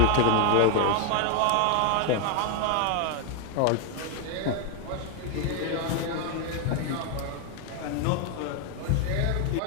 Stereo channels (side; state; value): both; different; correlation 0.00